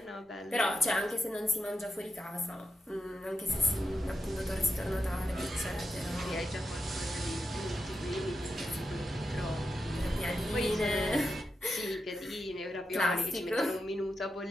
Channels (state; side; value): normal; both; correlation 0.87